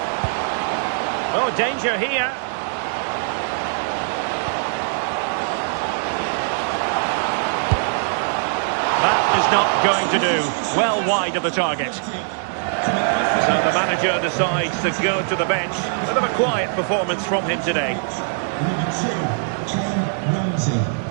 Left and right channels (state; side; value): silent; left; digital silence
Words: Oh, danger here. That is not going to do. Well wide of the target. So the manager decides to go to the bench. Bit of a quiet performance from him today. Number 2, Ken Ramsey.